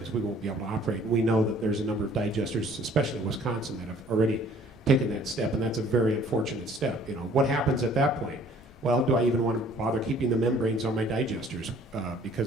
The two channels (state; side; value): normal; both; correlation 0.56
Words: we won't be able to operate. We know that there's a number of digesters, especially in Wisconsin, that have already taken that step, and that's a very unfortunate step. What happens at that point? Well, do I even want to bother keeping the membranes on my digesters?